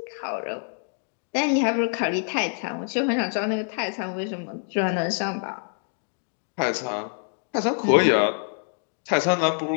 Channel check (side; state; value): right; silent; 61 dB below the other